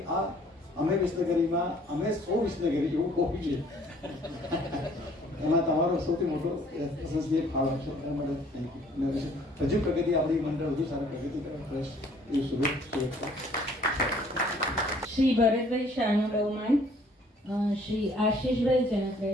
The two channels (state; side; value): normal; both; correlation 0.59